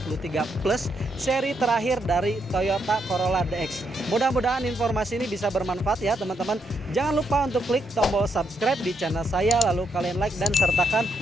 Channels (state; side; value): normal; both; correlation 0.78